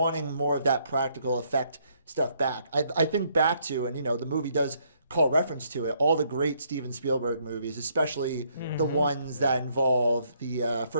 more of that practical effect stuff back. I think back to, and the movie does call reference to it, all the great Steven Spielberg movies, especially the ones that involve the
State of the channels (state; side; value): inverted; both; correlation -0.70